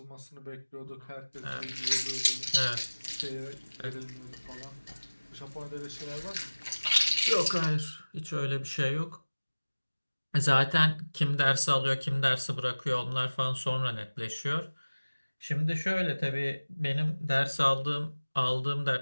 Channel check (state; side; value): inverted; both; correlation -1.00